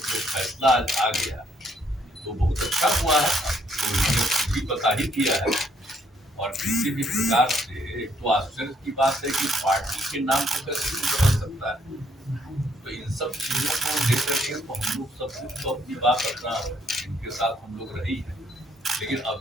जो फैसला आज आ गया तो बहुत अच्छा हुआ है. तो इन्होंने भी पता ही किया है. और किसी भी प्रकार से एक तो आश्चर्य की बात है कि पार्टी के नाम को कैसे नहीं बदल सकता है. तो इन सब चीजों को लेकर के तो हम लोग सब कुछ तो अपनी बात अपना इनके साथ हम लोग रही है. लेकिन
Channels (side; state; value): both; normal; correlation 0.68